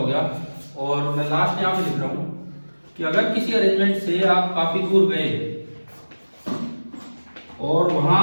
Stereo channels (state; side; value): inverted; both; correlation -1.00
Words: गया, और मैं लास्ट यहां पे लिख रहा हूं कि अगर किसी अरेंजमेंट से आप काफी दूर गए और वहां